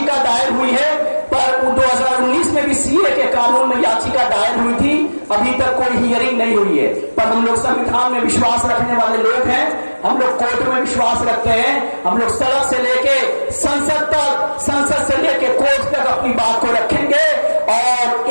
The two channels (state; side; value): inverted; both; correlation -1.00